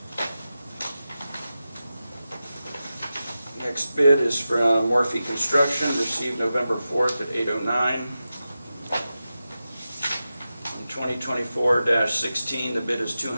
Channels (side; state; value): both; inverted; correlation -0.92